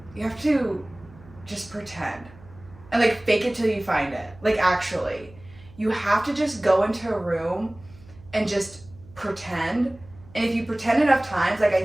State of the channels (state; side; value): noise; right; hum, 22 dB below the sound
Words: you have to just pretend and like fake it till you find it. Like actually, you have to just go into a room and just pretend. And if you pretend enough times, like I